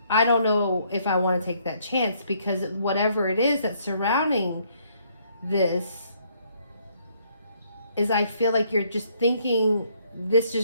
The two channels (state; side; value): inverted; both; correlation -0.68